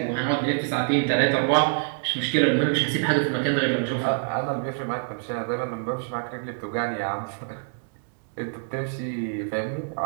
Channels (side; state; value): left; silent; digital silence